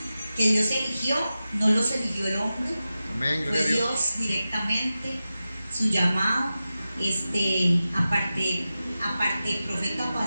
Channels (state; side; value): inverted; both; correlation -0.93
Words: que Dios eligió, no los eligió el hombre. Amén, Fue Dios directamente, su llamado, aparte profeta,